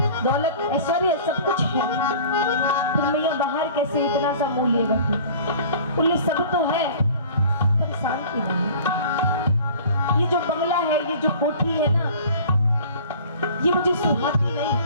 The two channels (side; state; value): both; inverted; correlation -0.45